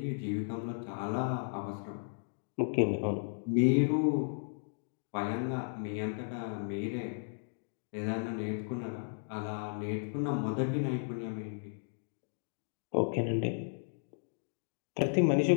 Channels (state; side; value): silent; right; digital silence